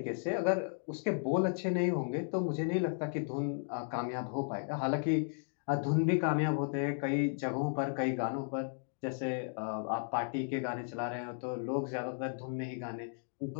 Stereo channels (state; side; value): silent; right; digital silence